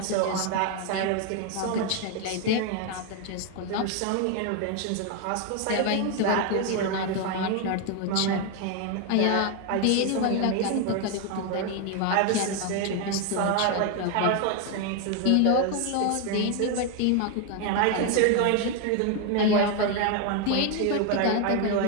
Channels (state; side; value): different; both; correlation 0.01